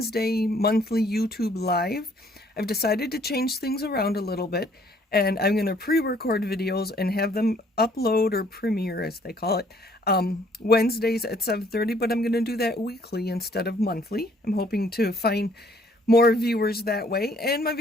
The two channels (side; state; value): both; normal; correlation 0.62